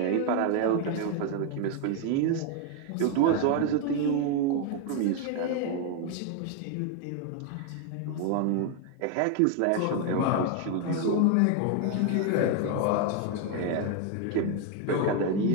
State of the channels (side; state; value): both; different; correlation 0.01